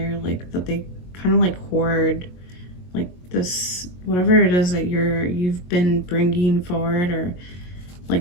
like that they kind of like hoard like this, whatever it is that you've been bringing forward or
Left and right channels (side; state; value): right; late; 22 ms